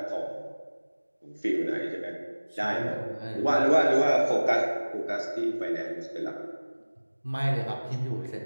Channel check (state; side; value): inverted; both; correlation -1.00